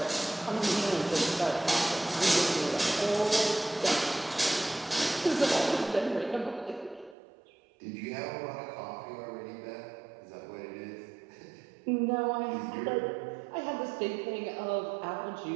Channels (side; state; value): left; drops out; at 7.2 s